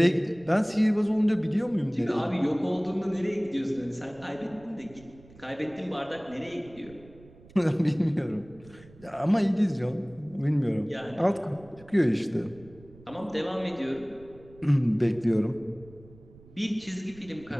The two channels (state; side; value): noise; right; rumble, 23 dB below the sound